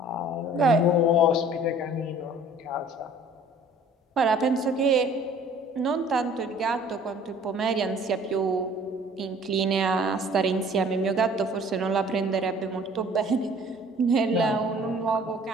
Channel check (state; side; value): normal; both; correlation 0.52